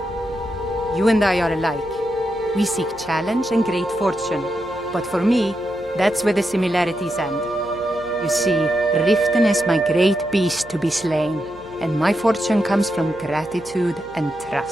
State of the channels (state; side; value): noise; left; hum, 23 dB below the sound